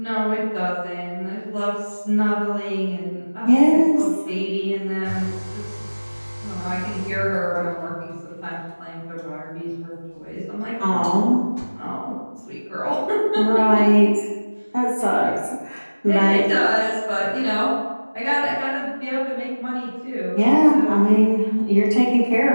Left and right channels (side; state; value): both; inverted; correlation -1.00